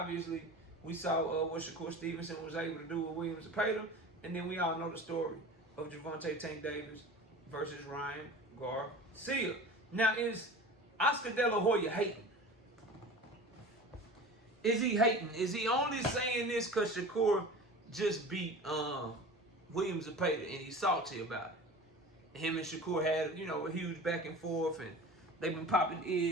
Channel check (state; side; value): normal; both; correlation 0.37